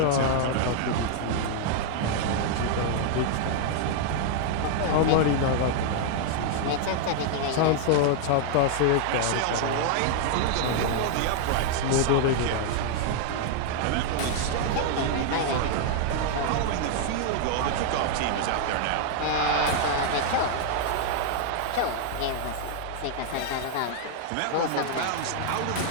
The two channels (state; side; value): different; both; correlation 0.00